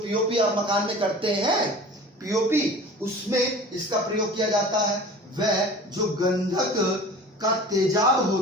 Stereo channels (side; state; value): both; normal; correlation 0.40